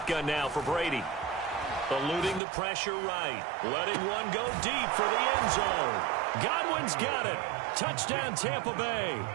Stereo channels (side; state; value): left; drops out; at 2.4 s